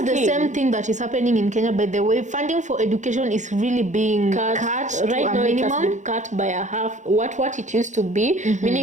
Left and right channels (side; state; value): left; late; 0.35 ms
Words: the same thing that is happening in Kenya. By the way, funding for education is really being cut right to now. a minimum. It has been cut by a half what it used to be.